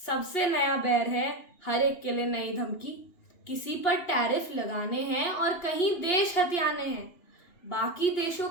नया बैर है, हर एक के लिए नई धमकी। किसी पर टैरिफ लगाने हैं और कहीं देश हथियाने हैं। बाकी देशों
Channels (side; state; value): right; late; 2.8 ms